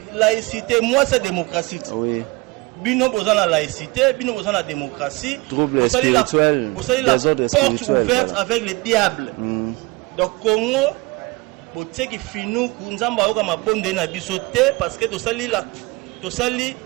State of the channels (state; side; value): quieter; left; 24.2 dB